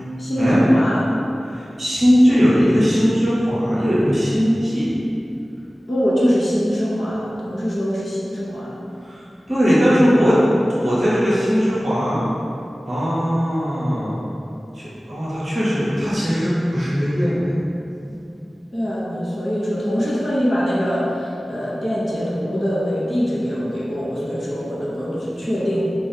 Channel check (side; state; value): both; normal; correlation 0.97